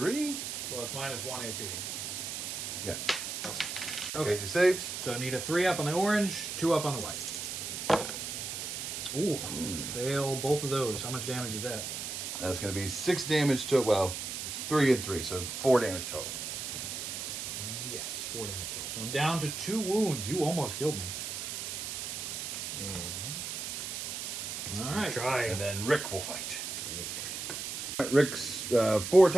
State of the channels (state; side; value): noise; right; hiss, 5 dB below the sound